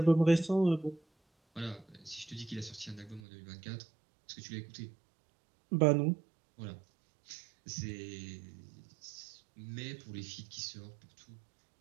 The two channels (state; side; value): drops out; left; at 3.2 s